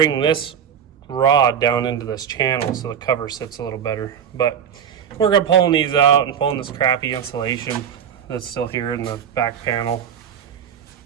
this rod down into this channel so the cover sits a little better. But we're gonna pulling these out and pulling this crappy insulation that's still here in the back panel.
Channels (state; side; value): quieter; left; 8.3 dB